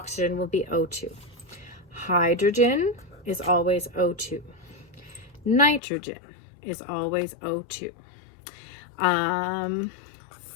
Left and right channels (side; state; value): right; drops out; at 5.8 s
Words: will be O2. Hydrogen is always O2. Nitrogen is always O2.